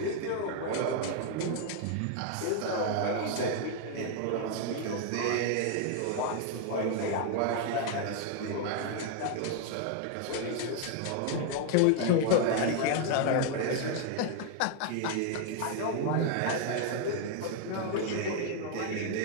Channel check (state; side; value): different; both; correlation 0.00